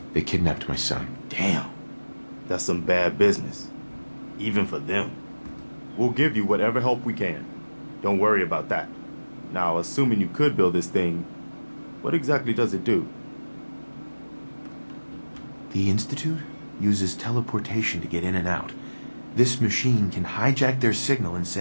They kidnapped my son. Damn. That's some bad business. Even for them. We'll give you whatever help we can. Don't worry about that. Now, assuming you could build this thing, what exactly does it do? The Institute uses teleportation to get in and out. This machine can hijack their signal and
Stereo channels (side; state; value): both; inverted; correlation -1.00